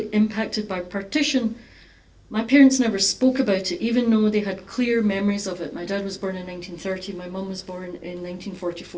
impacted by partition, my parents never spoke about it, even though they had clear memories of it. My dad was born in 1930, my mum was born in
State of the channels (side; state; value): both; identical; correlation 1.00